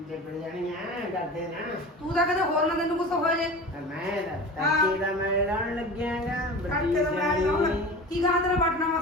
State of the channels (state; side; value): normal; both; correlation 0.34